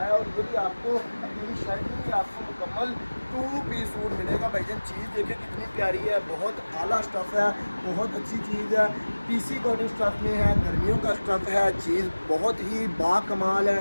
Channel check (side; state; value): both; inverted; correlation -1.00